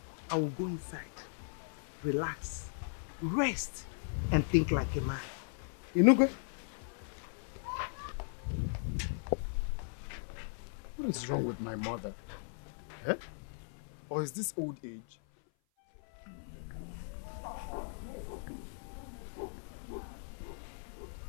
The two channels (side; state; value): right; silent; 53 dB below the other